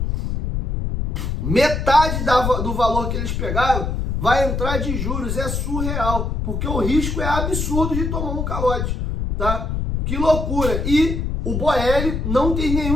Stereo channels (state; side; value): noise; left; rumble, 2 dB below the sound